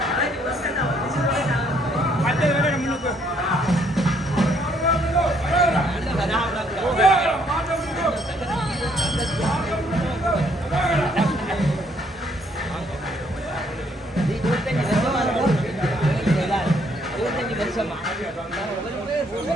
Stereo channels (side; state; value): both; normal; correlation 0.68